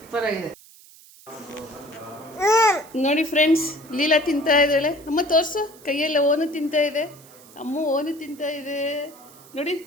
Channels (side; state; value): right; noise; hiss, 23 dB below the sound